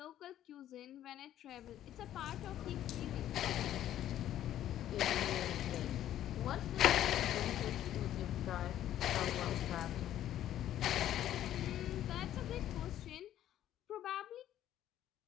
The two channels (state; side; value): quieter; right; 12.0 dB